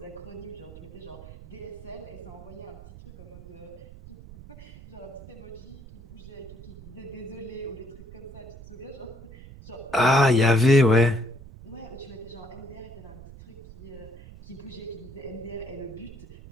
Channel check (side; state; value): right; noise; rumble, 16 dB below the sound